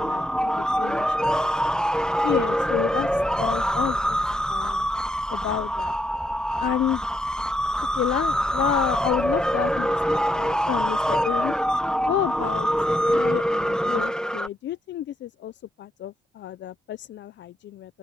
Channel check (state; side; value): normal; both; correlation 0.79